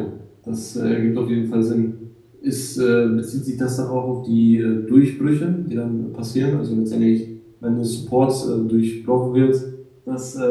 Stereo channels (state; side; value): identical; both; correlation 1.00